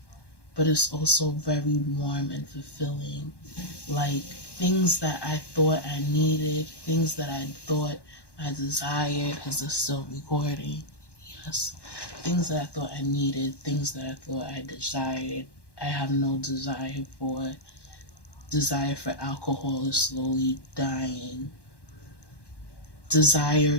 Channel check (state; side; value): late; right; 1.1 ms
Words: but it's also very warm and fulfilling. Like, things that I thought I needed, things that I thought I desired. Is this still recording? Yes. Things that I thought I needed, things that I thought I desired, I have no desire for. Desire for alcohol is slowly dying.